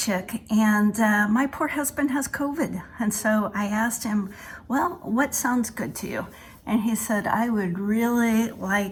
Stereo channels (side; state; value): both; identical; correlation 1.00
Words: and my poor husband has COVID. And so I asked him, well, what sounds good to you? And he said, I would really